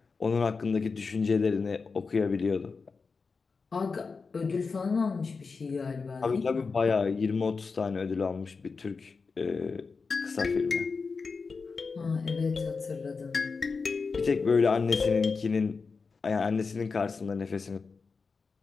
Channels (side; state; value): right; quieter; 4.7 dB